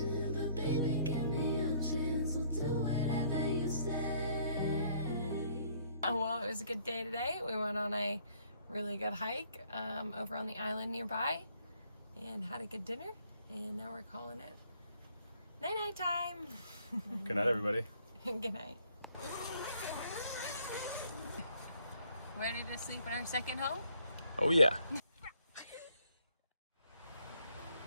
but baby, give me a chance. We'll do whatever you say. Well, it was a good day today. We went on a really good hike over on the island nearby and had a good dinner. And now we're calling it night-night time. Good night, everybody. Good night. Ready to sleep in our second home? Oh yeah.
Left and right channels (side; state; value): both; inverted; correlation -0.64